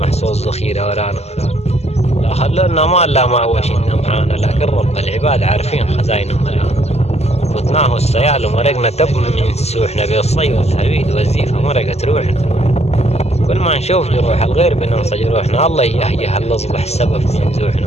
صوت ذخيرة ورانا. لا خلونا مال لا ما وشنا معانا، لكن رب العباد عارفين خزاينه ملانا. فتناه السيال ومرقنا تب من سوحنا، بالصي والهريد والزيفة مرقت روحنا. كل ما نشوف جروح الغير بننسى جروحنا، الله يهيه الأصبح السبب في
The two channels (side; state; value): right; late; 0.31 ms